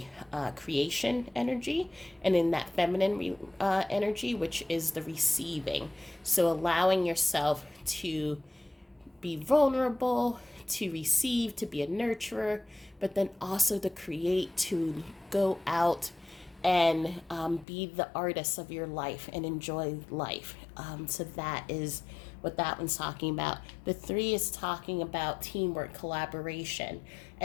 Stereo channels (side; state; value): right; drops out; at 17.7 s